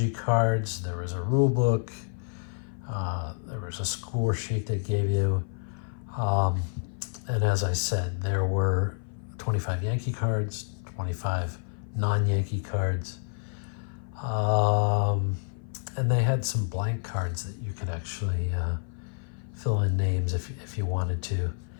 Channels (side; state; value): right; silent; 55 dB below the other